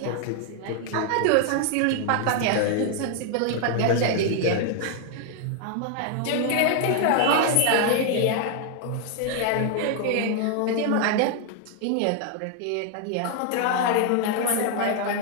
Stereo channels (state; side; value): different; both; correlation 0.00